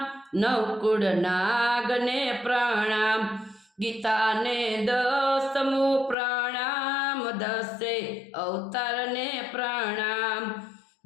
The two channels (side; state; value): right; drops out; at 6.2 s